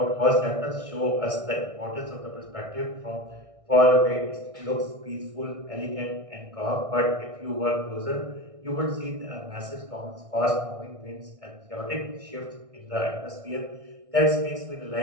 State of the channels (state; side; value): late; left; 1.6 ms